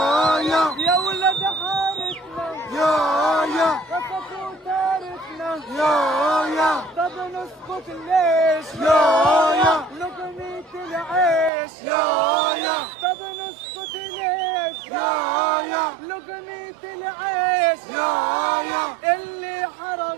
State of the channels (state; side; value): drops out; left; at 11.5 s